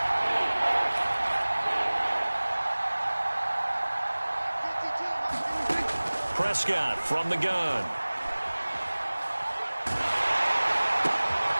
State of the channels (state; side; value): inverted; both; correlation -1.00